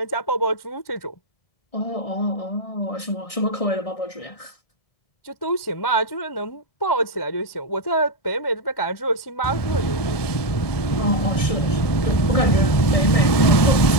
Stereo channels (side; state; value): right; late; 1.7 ms